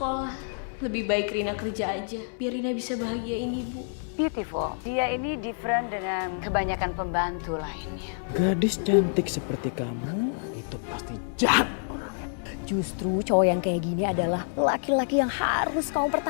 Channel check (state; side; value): silent; right; digital silence